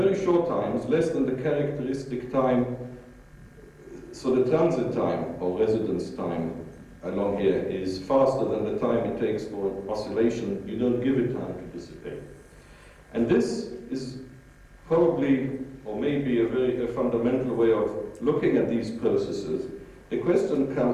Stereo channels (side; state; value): both; identical; correlation 1.00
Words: short times, less than the characteristic time, so the transit time or residence time along here is faster than the time it takes for oscillation. You don't give it time to dissipate. And this is probably, or maybe a fundamental way of looking at these processes. The question